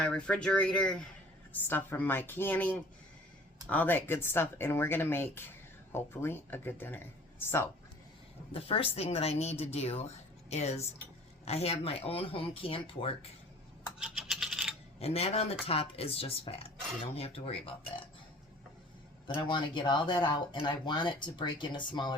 refrigerator, stuff from my canning, all that good stuff, and we're going to make, hopefully, a good dinner. So the first thing that I need to do is I have my own home canned pork, and that on the top is just fat. You don't have to worry about that. But I want to get all that out, and I want it to break into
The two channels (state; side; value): normal; both; correlation 0.49